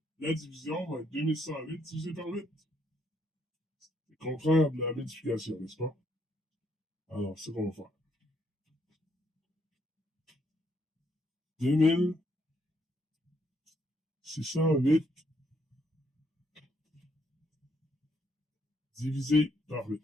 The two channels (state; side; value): normal; both; correlation 0.73